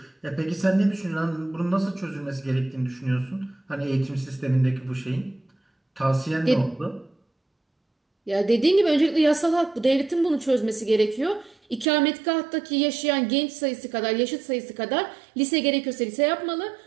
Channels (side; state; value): left; drops out; at 11.9 s